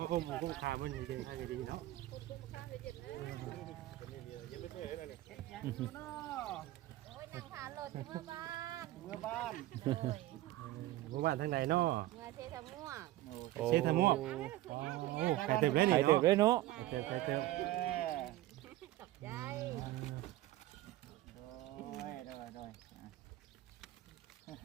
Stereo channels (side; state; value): left; quieter; 15.9 dB